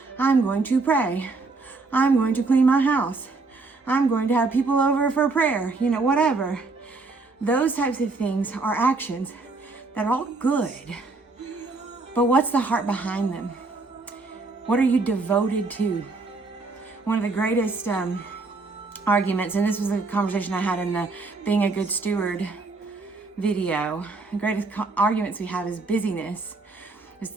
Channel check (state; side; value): quieter; left; 3.7 dB